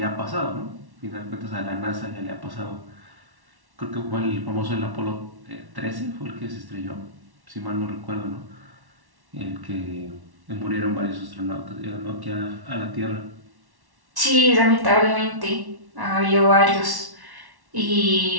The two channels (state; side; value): late; left; 1.1 ms